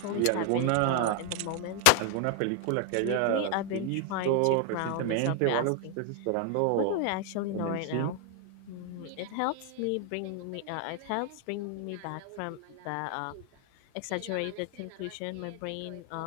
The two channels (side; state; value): both; different; correlation 0.00